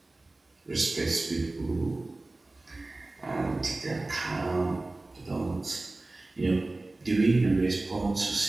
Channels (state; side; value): quieter; left; 3.0 dB